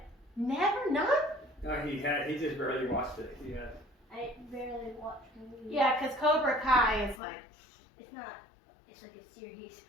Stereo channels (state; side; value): drops out; right; at 7.2 s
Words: never none? No, he just barely watched it. He had. I barely watch movies. Yeah, because Cobra Kai is like, It's not. It's like a series.